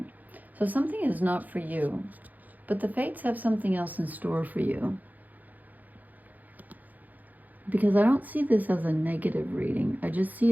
So something is not for you, but the fates have something else in store for you. Because I don't see this as a negative reading. I just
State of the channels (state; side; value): late; left; 0.081 ms